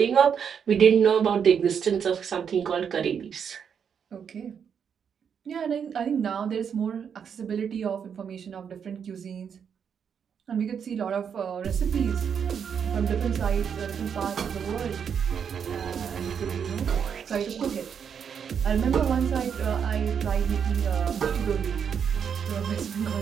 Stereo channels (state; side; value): quieter; left; 7.4 dB